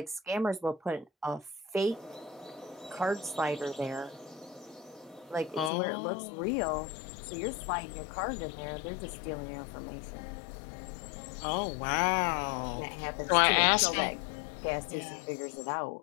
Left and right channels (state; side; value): drops out; right; at 5.7 s